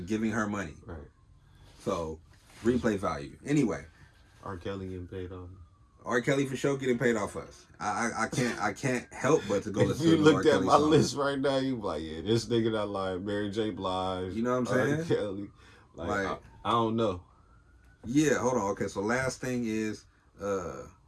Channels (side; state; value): both; identical; correlation 1.00